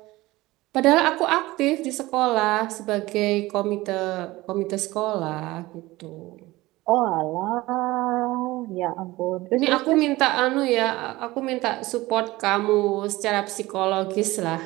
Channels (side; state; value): left; quieter; 19.1 dB